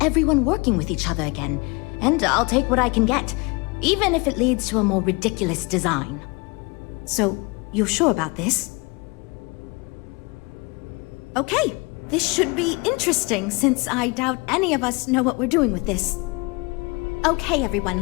everyone working with each other again. And I'll take what I can get, even if it leads to a more ridiculous design. So, you're sure about this? Okay, this should be interesting since I doubt any of us know what we're doing with this. Okay,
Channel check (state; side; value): quieter; right; 27.2 dB